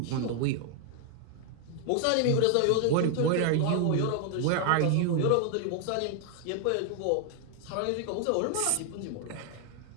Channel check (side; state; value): both; different; correlation 0.00